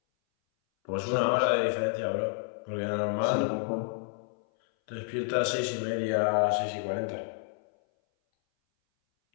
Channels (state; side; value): silent; right; 58 dB below the other